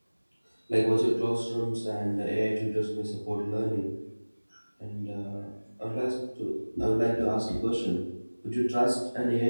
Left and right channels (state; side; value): inverted; both; correlation -1.00